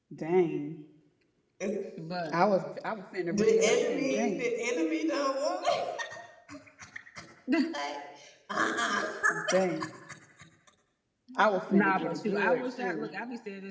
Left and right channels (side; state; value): both; identical; correlation 1.00